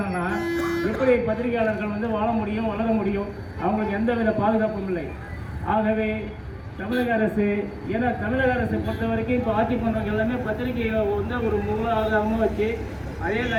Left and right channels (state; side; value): identical; both; correlation 1.00